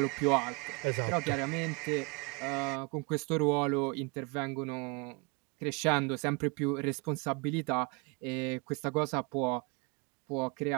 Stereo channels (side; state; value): left; quieter; 31.0 dB